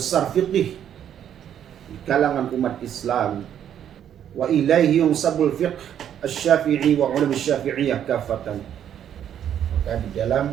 fiqh di kalangan umat Islam. Wa ilaihi yunsabul fiqh asy-Syafi'i wa ulama Syafi'iyah kafatan. Maka di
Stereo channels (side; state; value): left; quieter; 9.7 dB